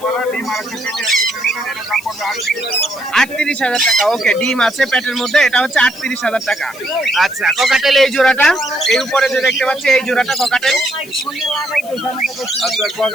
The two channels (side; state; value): left; noise; hiss, 19 dB below the sound